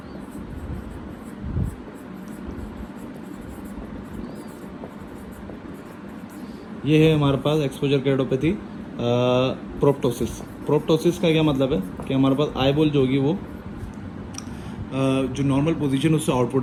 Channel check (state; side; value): identical; both; correlation 1.00